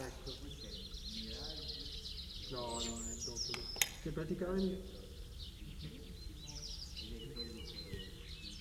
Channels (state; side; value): identical; both; correlation 1.00